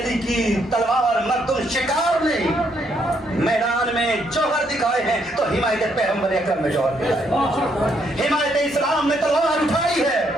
کی تلوار مردم شکار نہیں میدان میں جوہر دکھائے ہیں تو حمایت پیغمبر اکرم میں جوہر دکھائے، حمایت اسلام میں تلوار اٹھائی ہے۔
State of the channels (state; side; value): normal; both; correlation 0.73